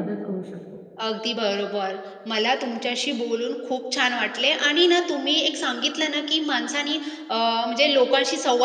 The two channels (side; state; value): both; identical; correlation 1.00